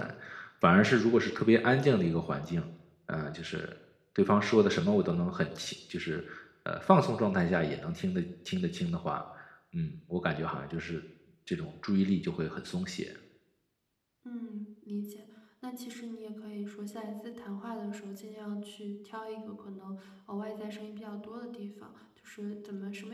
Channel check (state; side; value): identical; both; correlation 1.00